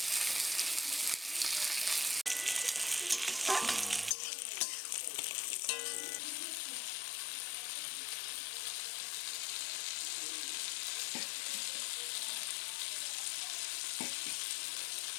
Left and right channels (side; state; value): right; drops out; at 4.2 s